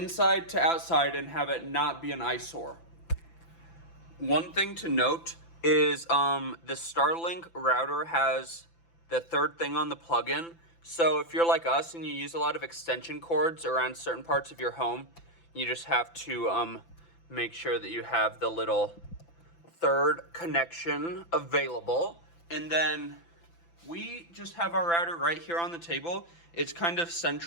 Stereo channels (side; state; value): right; late; 5.9 ms